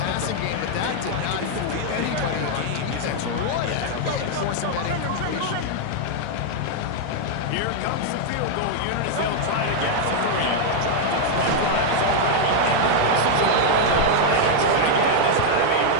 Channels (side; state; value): both; different; correlation 0.00